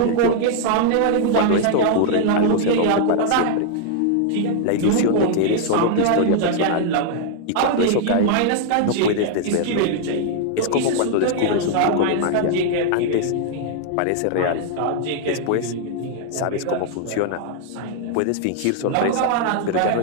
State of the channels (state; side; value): different; both; correlation 0.00